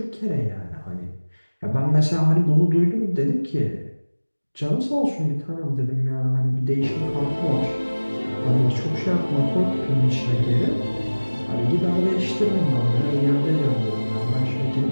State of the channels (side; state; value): both; inverted; correlation -1.00